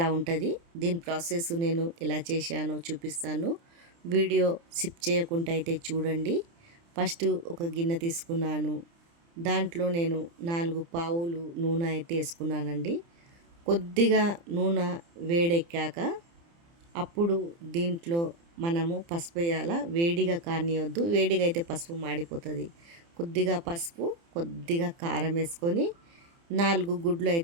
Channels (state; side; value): late; left; 30 ms